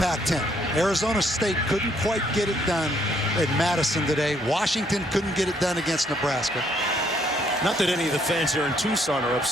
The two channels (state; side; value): normal; both; correlation 0.69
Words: Arizona State couldn't quite get it done at Madison today. Washington couldn't get it done against Nebraska. Not that any of the fans here in Tucson are